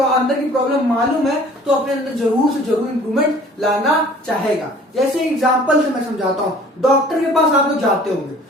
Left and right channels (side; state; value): both; normal; correlation 0.50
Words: अंदर की प्रॉब्लम मालूम है तो अपने अंदर जरूर से जरूर इंप्रूवमेंट लाना चाहेगा। जैसे एग्जांपल से मैं समझाता हूं। डॉक्टर के पास आप लोग जाते होंगे,